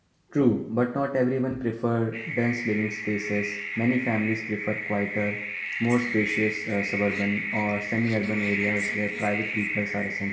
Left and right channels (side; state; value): both; identical; correlation 1.00